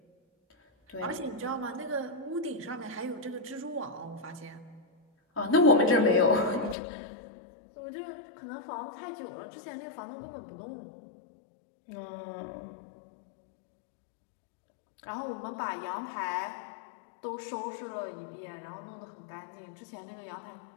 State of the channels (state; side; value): drops out; right; at 6.8 s